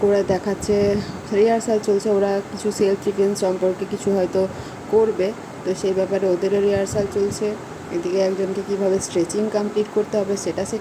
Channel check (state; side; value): identical; both; correlation 1.00